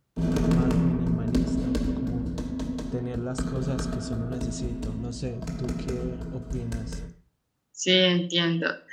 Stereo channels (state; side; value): identical; both; correlation 1.00